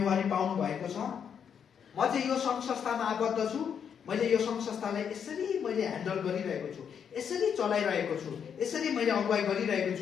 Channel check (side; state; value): right; quieter; 7.6 dB